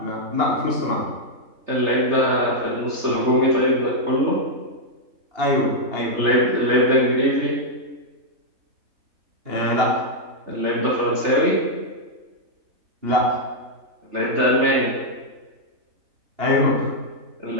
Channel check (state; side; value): late; left; 3.3 ms